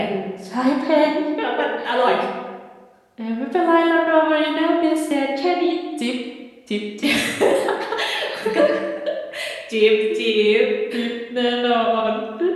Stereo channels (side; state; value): both; identical; correlation 1.00